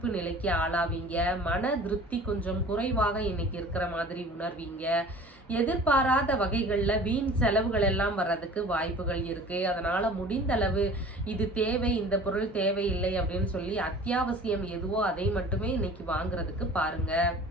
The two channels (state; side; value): normal; both; correlation 0.44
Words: நிலைக்கு ஆளாவீங்க. மன திருப்தி கொஞ்சம் குறைவாக இன்னைக்கு இருக்கிற மாதிரி உணர்வீங்க. எதிர்பாராத வகைகள்ல வீண் செலவுகள் எல்லாம் வர்றதுக்கு வாய்ப்புகள் இருக்கு. அதனால முடிந்த அளவு இது தேவை, இந்த பொருள் தேவையில்லை அப்படின்னு சொல்லி அத்தியாவசியம் எதுவோ அதை மட்டுமே இன்னைக்கு வாங்குறதுக்கு பாருங்க.